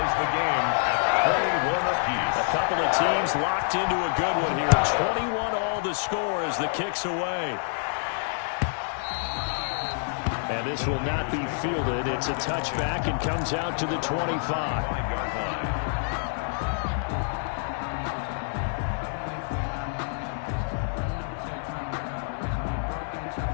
the game at 21 apiece. A couple of teams locked into a good one here. 21 all the score as the kick's away. And this will not be fielded. It's a touchback and comes out to the 25. 5-yard line.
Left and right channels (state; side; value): silent; right; digital silence